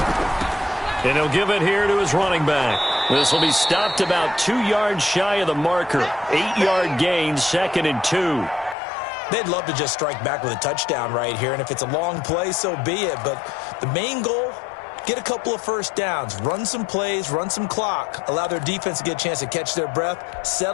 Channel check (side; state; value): right; drops out; at 8.8 s